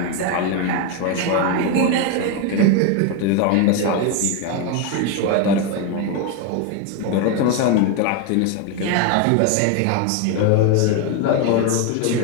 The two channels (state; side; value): different; both; correlation 0.02